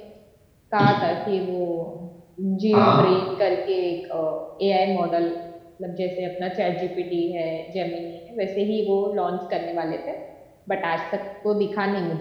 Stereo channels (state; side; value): identical; both; correlation 1.00